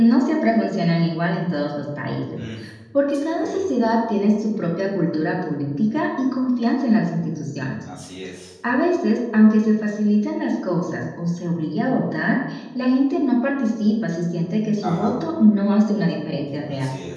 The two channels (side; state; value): both; identical; correlation 1.00